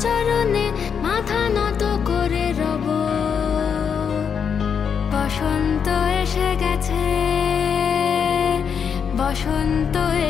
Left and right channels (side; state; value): right; quieter; 7.0 dB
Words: চরণে, মাথা নত করে রব, বসন্ত এসে গেছে, বসন্ত